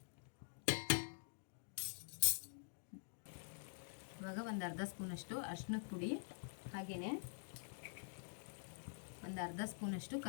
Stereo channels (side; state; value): right; silent; digital silence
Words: ಇವಾಗ ಒಂದು ಅರ್ಧ ಸ್ಪೂನಷ್ಟು ಅರಿಶಿನದ ಪುಡಿ, ಹಾಗೆಯೇ ಒಂದು ಅರ್ಧ ಸ್ಪೂನಷ್ಟು